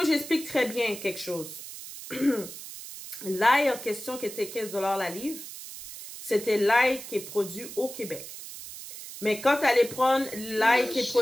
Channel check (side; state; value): right; noise; hiss, 12 dB below the sound